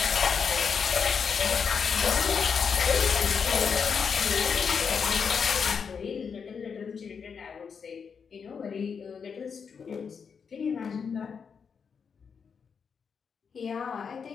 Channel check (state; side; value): quieter; right; 6.2 dB